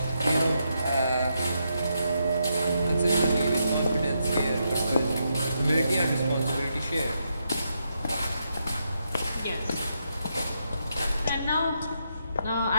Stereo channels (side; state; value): both; inverted; correlation -0.81